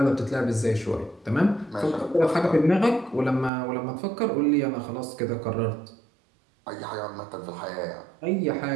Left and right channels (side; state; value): left; drops out; at 3.5 s